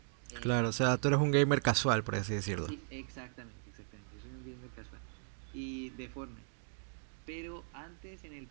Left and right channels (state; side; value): silent; left; digital silence